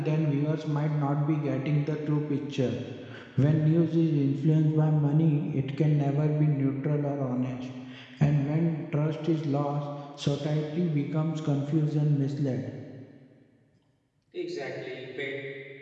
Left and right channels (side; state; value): both; identical; correlation 1.00